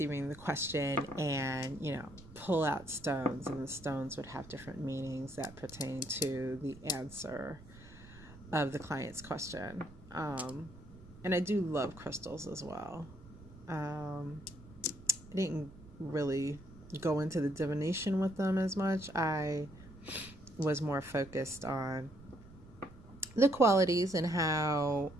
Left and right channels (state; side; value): noise; right; rumble, 19 dB below the sound